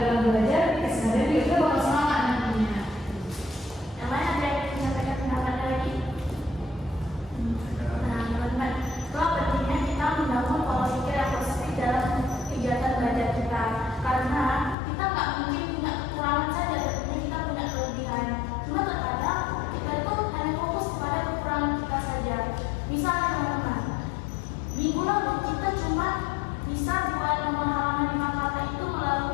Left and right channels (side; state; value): right; drops out; at 14.8 s